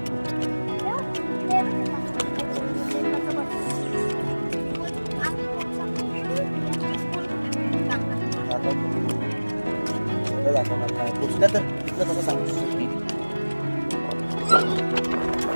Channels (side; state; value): both; inverted; correlation -1.00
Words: दाखवणार नाही पोचल्या तर तिथलं कसं सांगू